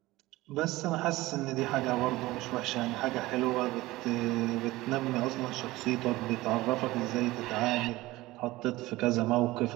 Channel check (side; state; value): left; quieter; 18.8 dB